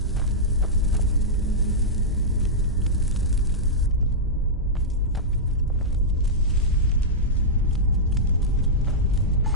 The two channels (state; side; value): normal; both; correlation -0.09